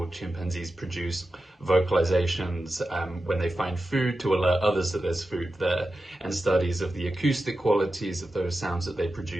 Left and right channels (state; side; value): normal; both; correlation 0.92